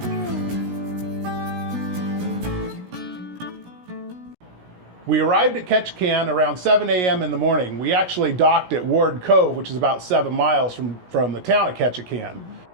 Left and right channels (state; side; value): late; left; 17 ms